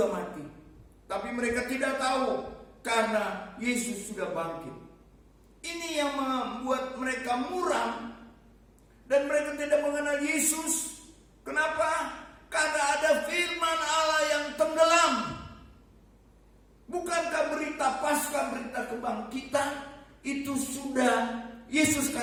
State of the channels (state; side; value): identical; both; correlation 1.00